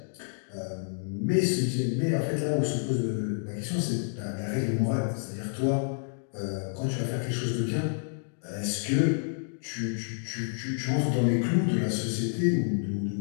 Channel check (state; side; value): silent; right; digital silence